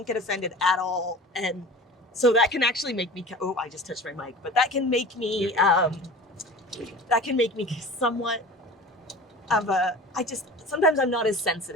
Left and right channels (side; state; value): both; normal; correlation 0.38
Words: get offended at all. And so that can actually make me, I just touched my mic, but that can make me somewhat of sometimes I'm not as